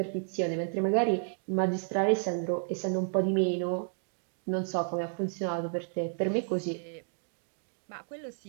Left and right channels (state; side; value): silent; left; digital silence